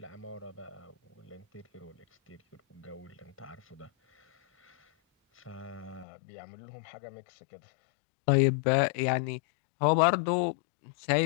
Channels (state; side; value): drops out; right; at 6.1 s